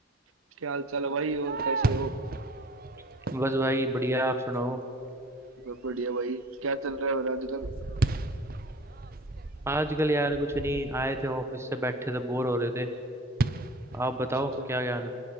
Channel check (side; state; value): both; normal; correlation 0.44